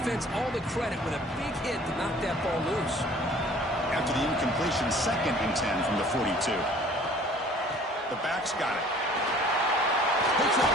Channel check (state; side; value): normal; both; correlation 0.51